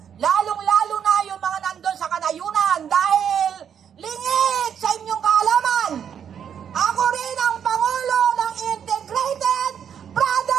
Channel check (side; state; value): left; quieter; 8.3 dB